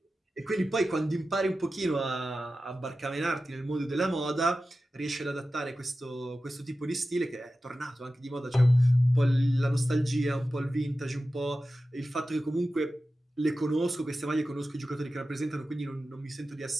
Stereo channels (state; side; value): normal; both; correlation 0.94